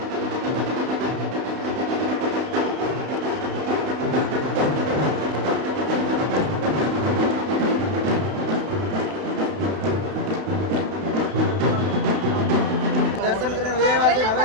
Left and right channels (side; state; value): left; late; 32 ms